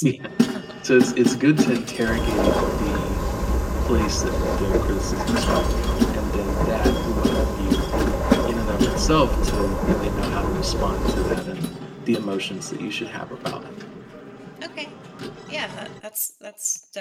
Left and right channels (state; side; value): identical; both; correlation 1.00